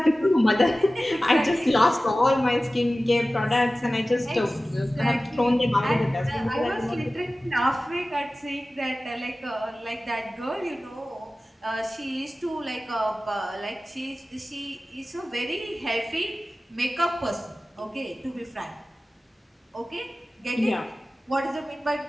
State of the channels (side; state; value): both; normal; correlation 0.96